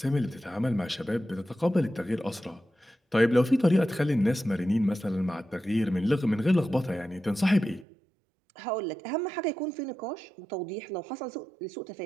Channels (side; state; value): left; drops out; at 7.9 s